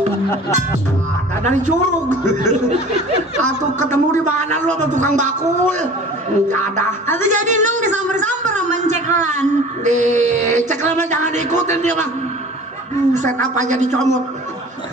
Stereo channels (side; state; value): both; normal; correlation 0.43